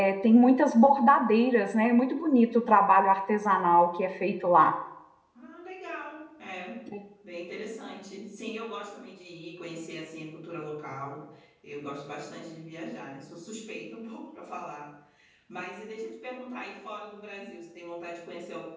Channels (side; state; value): both; identical; correlation 1.00